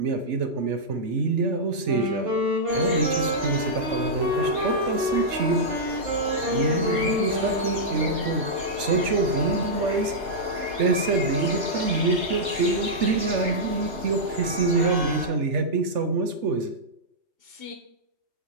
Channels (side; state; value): left; late; 3.4 ms